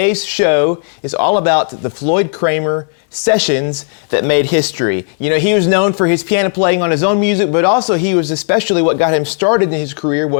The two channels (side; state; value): right; silent; digital silence